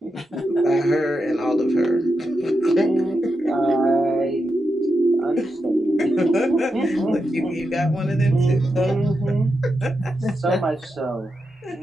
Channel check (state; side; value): normal; both; correlation 0.87